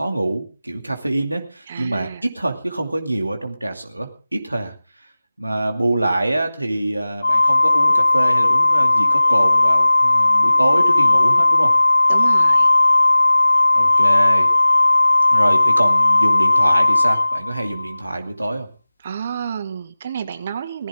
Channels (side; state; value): both; inverted; correlation -0.97